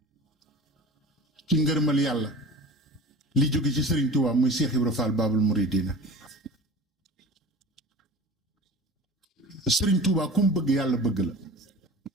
ci ngërëmal yàlla li jóge ci Sëriñ Tuubaa muy Cheikh Ibra Fall Baabul Muridiina Sëriñ Tuubaa ku mu bëgg yàlla bëgg la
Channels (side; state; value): both; normal; correlation 0.37